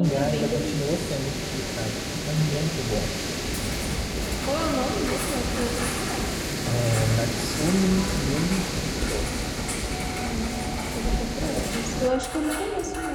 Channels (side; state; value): both; identical; correlation 1.00